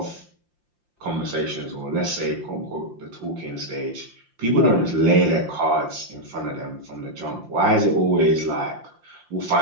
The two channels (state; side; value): late; left; 5.7 ms